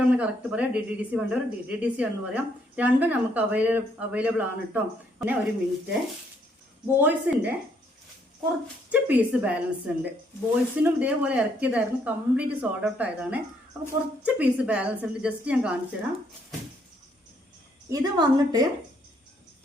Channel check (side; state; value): both; normal; correlation 0.70